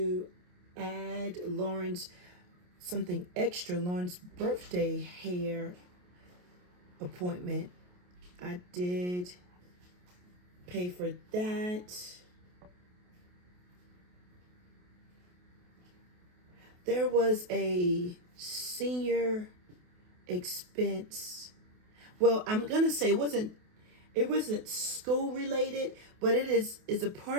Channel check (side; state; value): left; late; 28 ms